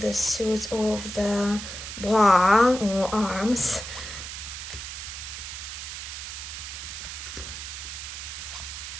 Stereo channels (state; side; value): noise; right; hiss, 8 dB below the sound